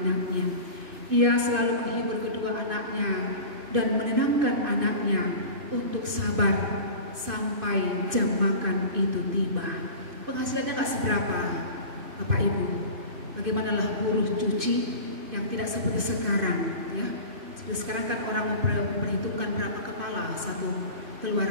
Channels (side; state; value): left; late; 2.6 ms